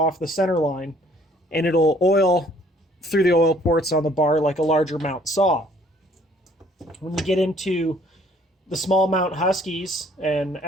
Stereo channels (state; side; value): normal; both; correlation 0.59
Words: the center line, and it'll oil through the oil ports on the bar like a larger mount saw. When you get into the small mount Huskies and